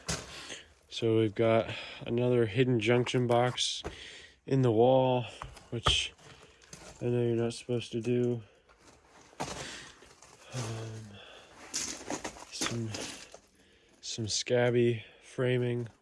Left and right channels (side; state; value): both; identical; correlation 1.00